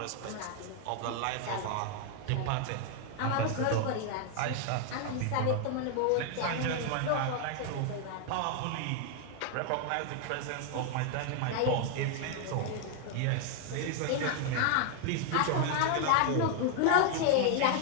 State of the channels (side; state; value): both; different; correlation 0.00